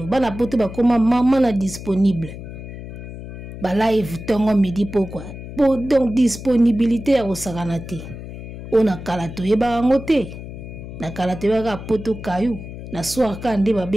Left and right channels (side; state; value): left; noise; hum, 11 dB below the sound